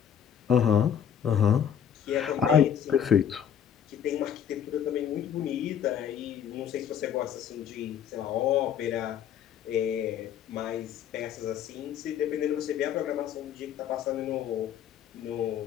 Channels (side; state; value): right; quieter; 8.9 dB